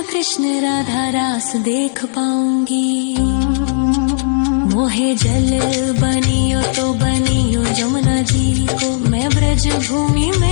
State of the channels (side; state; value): right; silent; 70 dB below the other